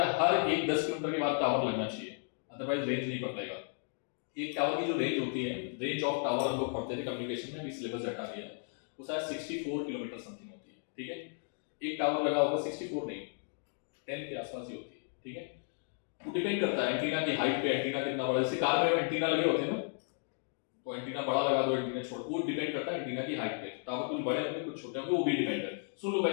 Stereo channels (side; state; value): right; silent; 55 dB below the other